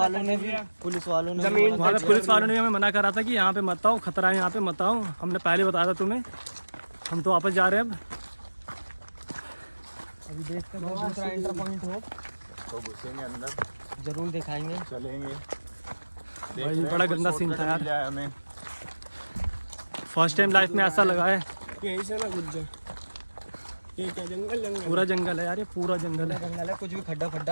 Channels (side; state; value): both; inverted; correlation -1.00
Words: ने भी पुलिस वालों ने हमें मना करा था कि यहाँ पे मत आओ, खतरा है यहाँ पे मत आओ। हमने पहले बताया था तुम्हें। हम तो वापस जा रहे हैं अब। अभी देखते हैं दूसरा एंटर पॉइंट हो तो घुसेंगे अंदर, जरूर दिखाएंगे, चलेंगे। भाई बड़ा गंदा सीन था यार, हमें फर्स्ट टाइम लाइफ में ऐसा लगा है। यहीं से ना घुस जाए। ये क्या जंगल पूरा जंगल है यार, ये पूरा जंगल है। जंगल है, कुछ भी खड्डा आ